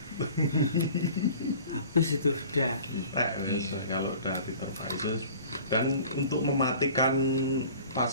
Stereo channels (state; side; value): inverted; both; correlation -0.46